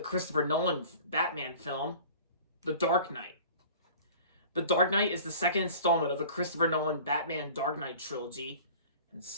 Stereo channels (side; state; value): both; inverted; correlation -0.43